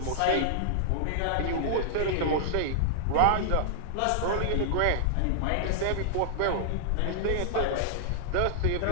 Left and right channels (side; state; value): both; different; correlation -0.01